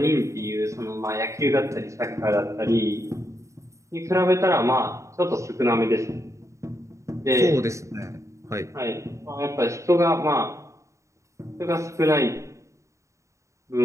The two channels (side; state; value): left; late; 0.15 ms